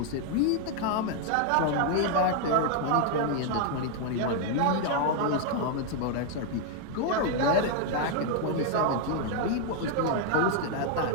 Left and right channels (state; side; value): different; both; correlation 0.00